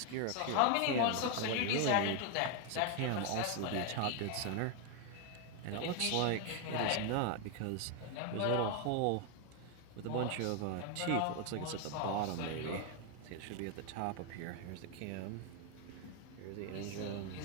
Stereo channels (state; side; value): different; both; correlation 0.01